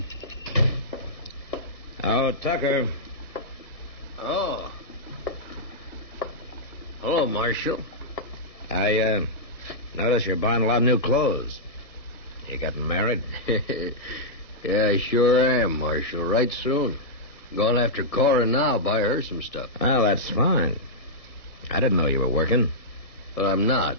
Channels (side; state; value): right; late; 1.7 ms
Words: Oh, Tucker. Oh. Hello, Marshal. I notice you're buying a lot of new clothes. You getting married? Yeah, I sure am, Marshal. Right soon. Going after Cora now, buy her some stuff. Well, that's fine. I didn't know you were working. Well, I'm not.